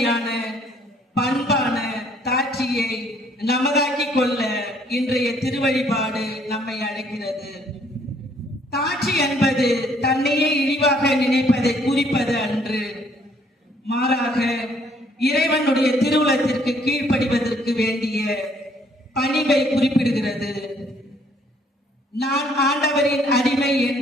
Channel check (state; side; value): normal; both; correlation 0.64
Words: பண்பான தாட்சியை நமதாக்கிக் கொள்ள இன்றைய திருவழிபாடு நம்மை அழைக்கிறது. தாட்சி என்பது தன்னையே இழிவாக நினைப்பதை குறிப்பது அன்று, மாறாக இறைவனுடைய திருவுளத்திற்கு கீழ்ப்படிவதற்கு வேண்டிய பணிவை குறிப்பிடுகிறது. நான் ஆண்டவரின் அடிமை